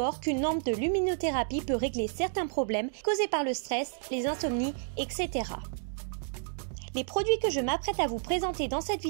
qu'une lampe de luminothérapie peut régler certains problèmes causés par le stress, les insomnies, etc. Les produits que je m'apprête à vous présenter dans cette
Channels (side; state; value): left; silent; digital silence